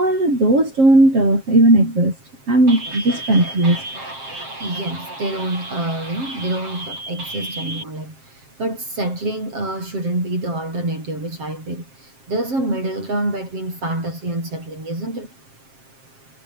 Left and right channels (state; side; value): late; left; 7.5 ms